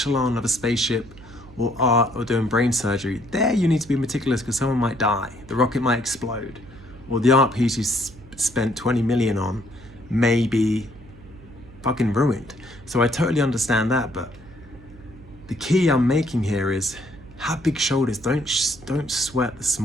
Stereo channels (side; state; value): right; noise; hum, 21 dB below the sound